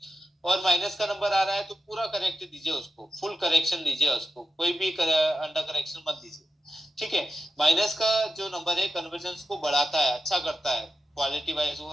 और माइनस का नंबर आ रहा है तो पूरा करेक्ट दीजिए, उसको फुल करेक्शन दीजिए, उसको कोई भी अंडर करेक्शन मत दीजिए। ठीक है, माइनस का जो नंबर है कन्वर्जेंस को बढ़ाता है, अच्छा करता है, क्वालिटी वाइज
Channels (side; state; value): both; normal; correlation 0.89